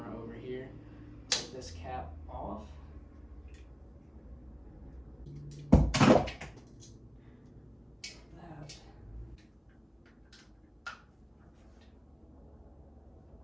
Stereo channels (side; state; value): both; identical; correlation 1.00